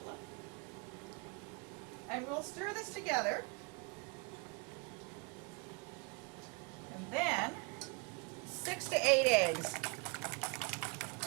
And we'll stir this together. And then 6 to 8 eggs.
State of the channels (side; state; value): left; quieter; 31.3 dB